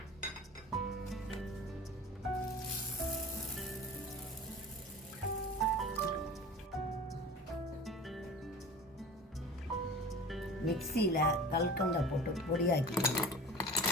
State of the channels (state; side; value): normal; both; correlation 0.37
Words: மிக்சியில் கல்கண்டை போட்டு பொடியாக்கிக்கணும்.